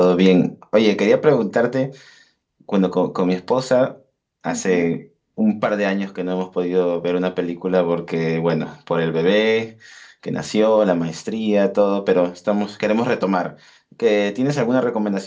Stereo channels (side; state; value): both; identical; correlation 1.00